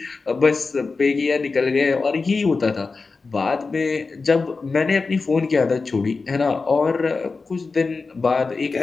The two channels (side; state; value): right; quieter; 4.2 dB